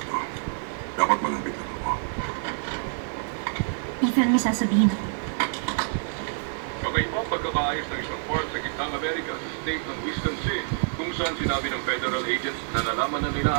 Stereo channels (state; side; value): silent; left; digital silence